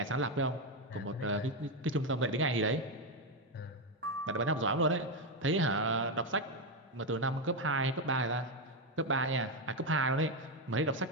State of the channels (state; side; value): normal; both; correlation 0.07